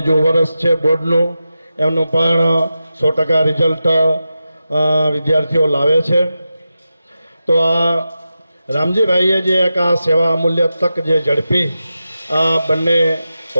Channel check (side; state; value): both; inverted; correlation -0.91